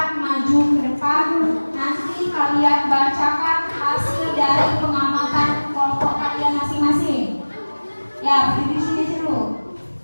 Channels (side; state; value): both; inverted; correlation -1.00